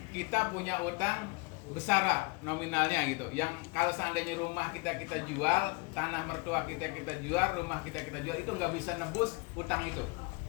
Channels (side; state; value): right; quieter; 29.6 dB